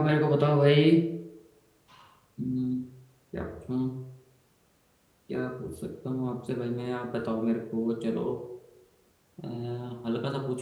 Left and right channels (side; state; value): both; identical; correlation 1.00